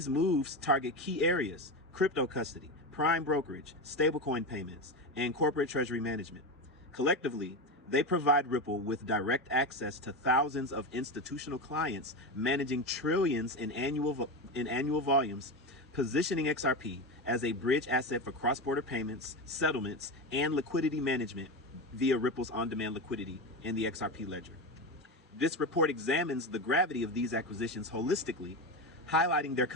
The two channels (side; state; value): both; normal; correlation 0.18